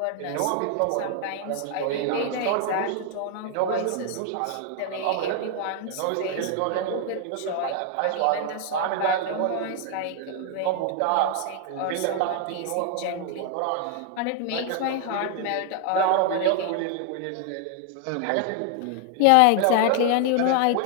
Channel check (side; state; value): both; different; correlation 0.00